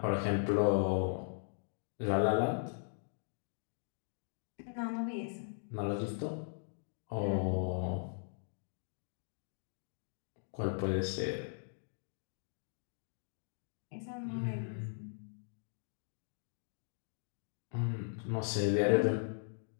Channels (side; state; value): right; silent; digital silence